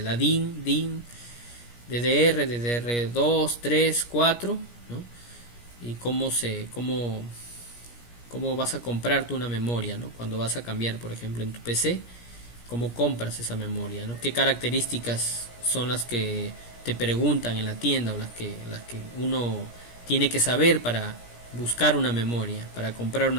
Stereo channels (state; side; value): late; right; 17 ms